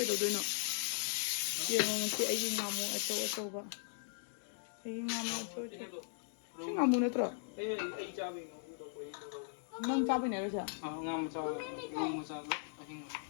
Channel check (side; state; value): right; silent; digital silence